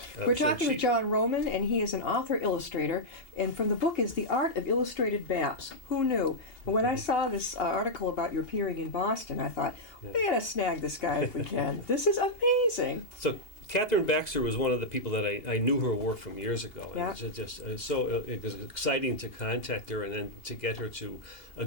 We're So talking she- with John Roman, and he is an author-illustrator, and from the book is The Art of Illustrated Maps. Who knew? When I saw this article about your appearing in Boston, I thought, we gotta snag this guy if we can. This is amazing. So Catherine Baxter was one of the people that I knew her work from years ago. Yeah. And it was exciting to contact her and then to get her to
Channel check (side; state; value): right; late; 2.8 ms